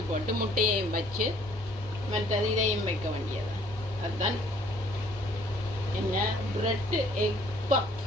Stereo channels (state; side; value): normal; both; correlation 0.59